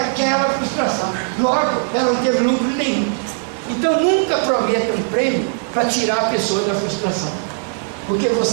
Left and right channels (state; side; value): silent; left; 67 dB below the other